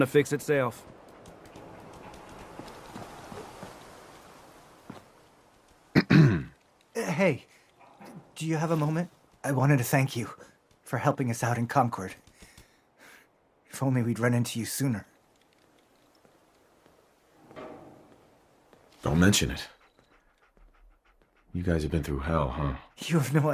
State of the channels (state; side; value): identical; both; correlation 1.00